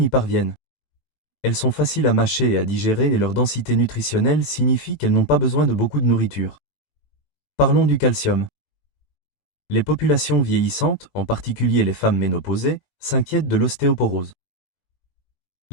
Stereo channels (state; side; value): late; right; 20 ms